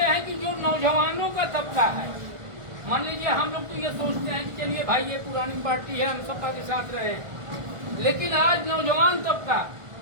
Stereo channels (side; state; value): left; late; 1.5 ms